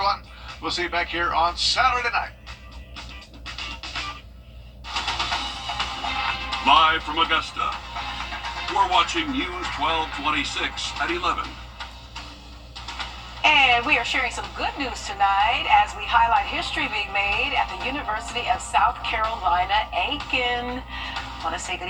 We'll see you back here on Saturday night. Live from Augusta, we're watching News 1226 at 11. And we are sharing some good news tonight as we highlight history being made at the University of South Carolina, Aiken. I want to say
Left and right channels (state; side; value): identical; both; correlation 1.00